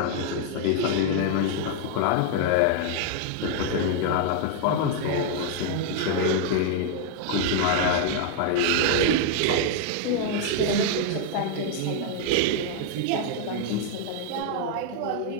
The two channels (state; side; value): different; both; correlation 0.00